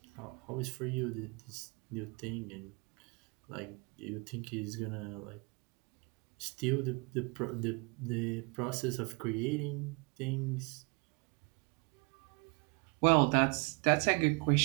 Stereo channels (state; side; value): quieter; left; 31.4 dB